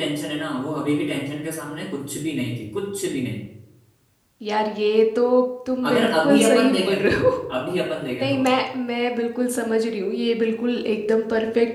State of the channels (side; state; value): both; identical; correlation 1.00